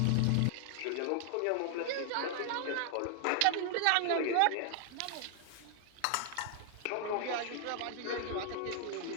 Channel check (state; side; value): different; both; correlation 0.00